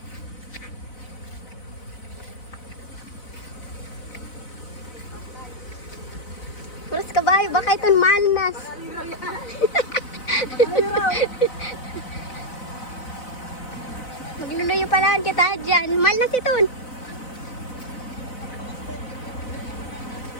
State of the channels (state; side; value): late; right; 4.0 ms